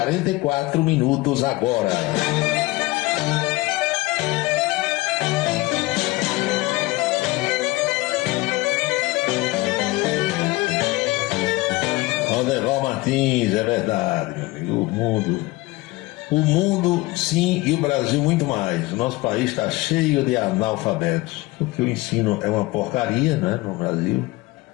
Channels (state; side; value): quieter; right; 21.0 dB